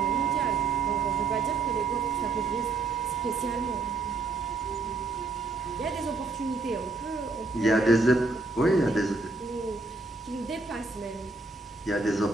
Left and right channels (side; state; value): left; quieter; 3.6 dB